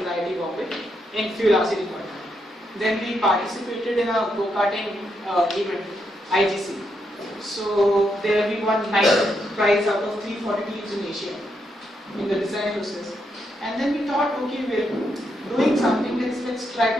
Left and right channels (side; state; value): both; normal; correlation 0.80